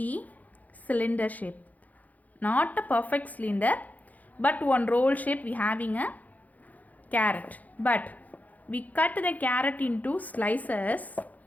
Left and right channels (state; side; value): late; right; 0.078 ms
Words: cylinder shape. Not a perfect cylinder, but one roll shape we having a carrot. But we cut the carrot into slices.